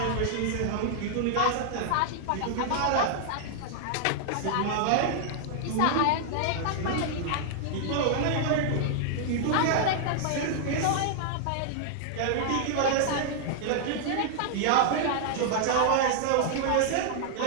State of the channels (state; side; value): different; both; correlation -0.01